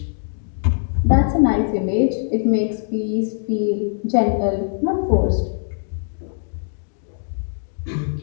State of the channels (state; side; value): silent; right; digital silence